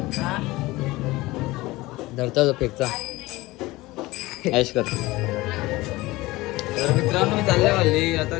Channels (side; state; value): right; quieter; 19.9 dB